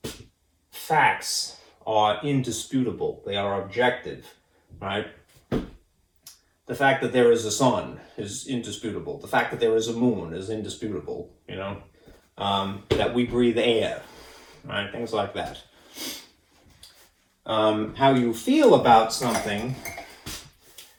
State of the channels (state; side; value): identical; both; correlation 1.00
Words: Facts are indisputable. They are objective, right? The fact that there is a sun is indisputable. The fact that there is a moon is indisputable, that we breathe air, right? Things like that. How you feel about something